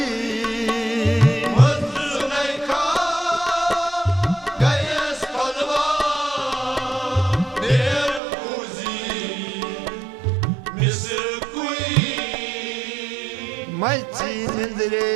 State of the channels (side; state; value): left; drops out; at 8.2 s